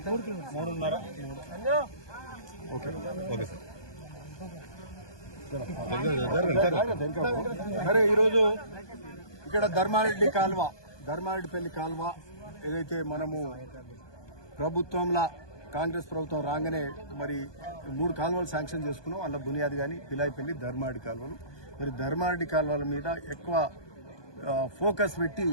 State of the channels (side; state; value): right; late; 1.2 ms